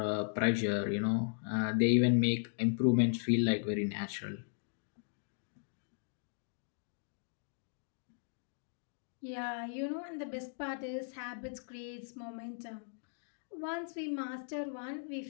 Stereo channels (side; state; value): right; silent; digital silence